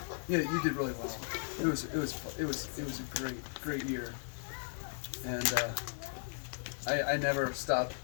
yeah, you did really well. It was a great year, and I never stopped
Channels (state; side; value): silent; right; digital silence